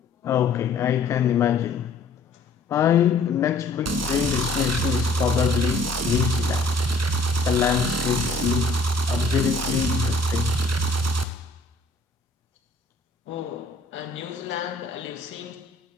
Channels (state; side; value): quieter; right; 3.3 dB